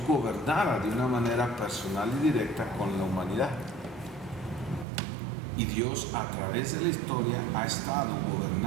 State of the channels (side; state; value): left; drops out; at 4.9 s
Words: gobernara de una manera personal y directa con la humanidad. Y Dios a través de la historia ha estado